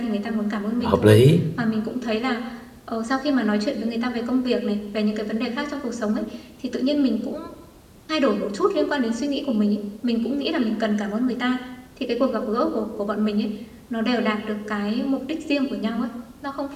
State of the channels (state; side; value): identical; both; correlation 1.00